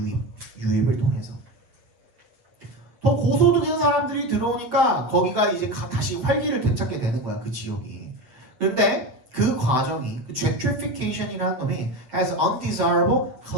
유입을 통해서 더 고소득인 사람들이 들어오니까 거기가 이제 다시 활기를 되찾게 되는 거야, 그 지역이. 그런데 그 과정이 gentrification이라는 놈이 has undesirable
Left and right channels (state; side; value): late; left; 7.8 ms